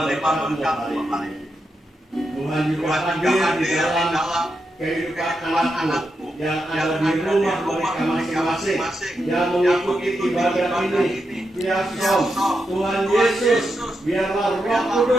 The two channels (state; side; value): normal; both; correlation 0.85